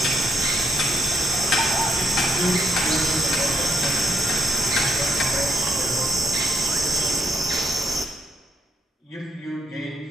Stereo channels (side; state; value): both; normal; correlation 0.74